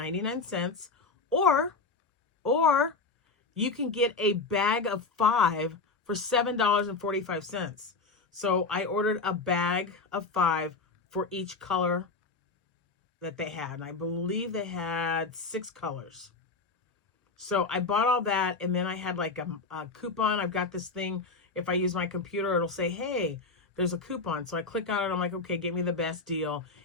or you can get a bag of 5 for $7.45. So I ordered a bag of 5 for each color that they had. And I believe they had 6 colors. So I bought all that, and then I had like a coupon. I've got this thing, if I use my computer, it'll say, hey, there's a coupon. So I click on it. I'm like, okay, get me the best deal.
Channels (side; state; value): right; quieter; 4.1 dB